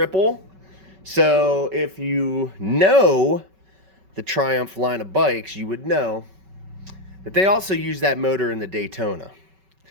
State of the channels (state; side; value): late; left; 5.3 ms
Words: So if you know the Triumph line of bikes, you would know that they also use that motor in the Daytona,